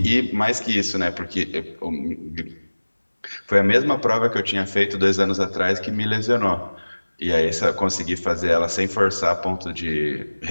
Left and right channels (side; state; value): both; inverted; correlation -1.00